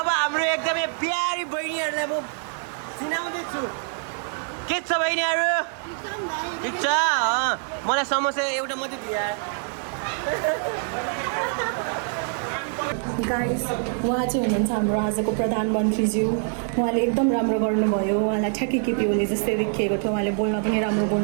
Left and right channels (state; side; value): silent; left; 56 dB below the other